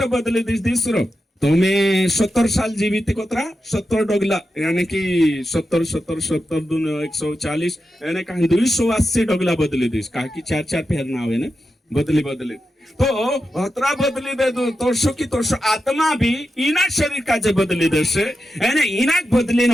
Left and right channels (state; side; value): normal; both; correlation 0.89